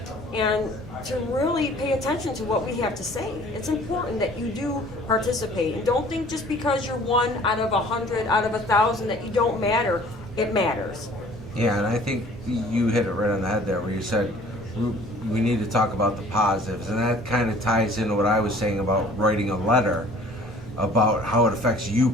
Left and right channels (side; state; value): both; normal; correlation 0.51